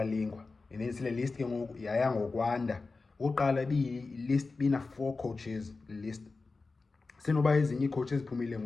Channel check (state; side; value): quieter; right; 3.9 dB